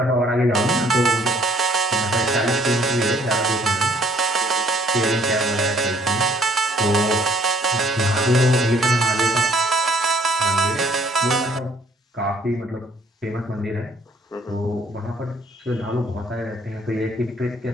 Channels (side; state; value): both; normal; correlation 0.62